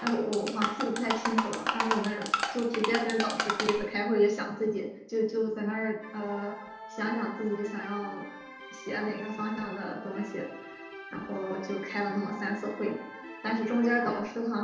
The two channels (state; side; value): identical; both; correlation 1.00